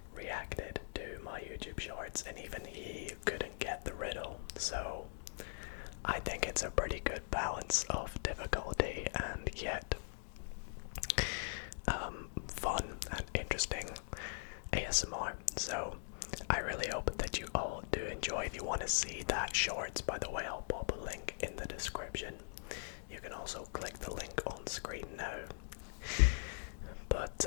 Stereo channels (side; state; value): right; silent; digital silence